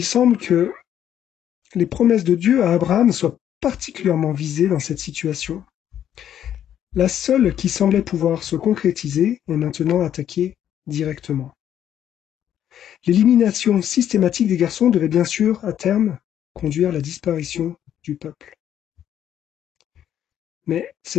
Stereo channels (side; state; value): right; quieter; 10.3 dB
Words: semble que les promesses de Dieu à Abraham soient particulièrement visées dans cette situation. La seule qui semblait pouvoir se concrétiser est maintenant attaquée directement. L'élimination systématique des garçons devait bien sûr, à terme, conduire à la disparition du peuple. Mais